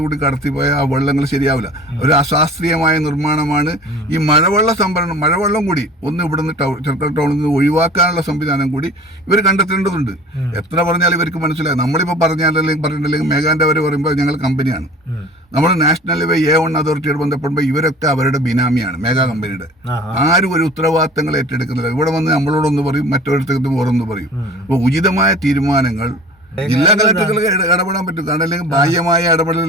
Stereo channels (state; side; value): normal; both; correlation 0.42